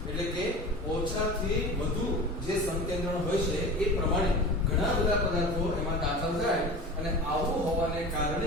એટલે કે ઓછાથી વધુ જે સંકેન્દ્રણ હોય છે એ પ્રમાણે ઘણા બધા પદાર્થો એમાં દાખલ થાય અને આવું હોવાને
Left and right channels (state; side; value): normal; both; correlation 0.34